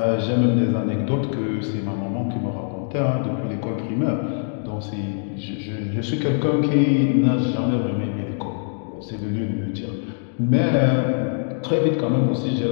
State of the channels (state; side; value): silent; right; digital silence